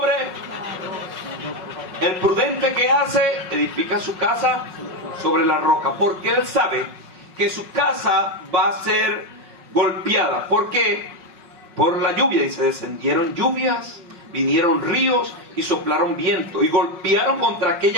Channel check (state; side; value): late; left; 5.4 ms